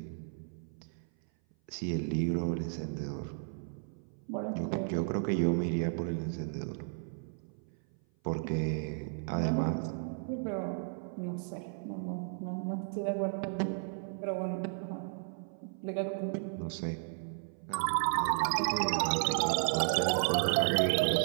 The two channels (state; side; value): silent; left; 55 dB below the other